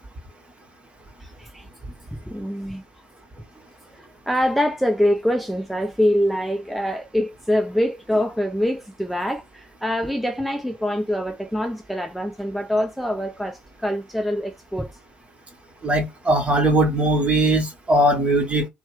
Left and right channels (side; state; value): both; normal; correlation 0.74